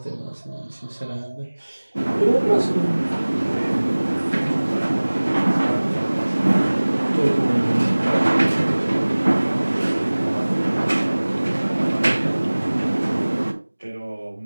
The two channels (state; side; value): inverted; both; correlation -1.00